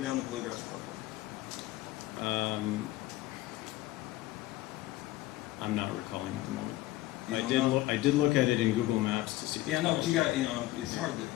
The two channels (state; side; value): quieter; right; 16.8 dB